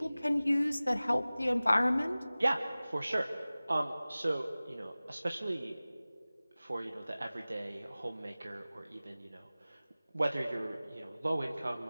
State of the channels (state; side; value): inverted; both; correlation -0.98